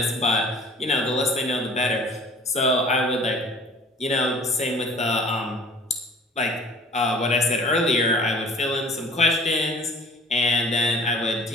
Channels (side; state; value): both; normal; correlation 0.49